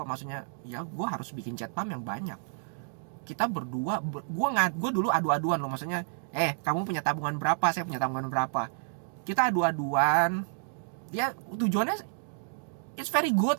maksudnya ya gue harus bikin jet pump yang banyak. Kita berdua, gue dulu adu-aduan loh, maksudnya kamu punya tabungan berapa, saya punya tabungan berapa, kita adu-aduan. Ya tujuannya it's very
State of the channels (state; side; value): silent; left; digital silence